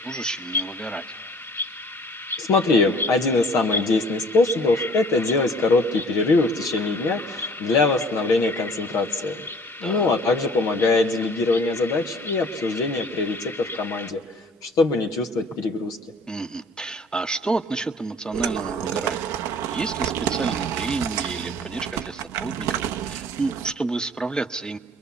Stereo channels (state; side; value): normal; both; correlation 0.51